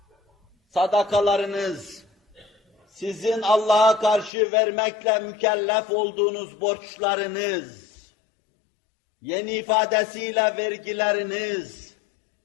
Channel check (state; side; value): drops out; right; at 4.3 s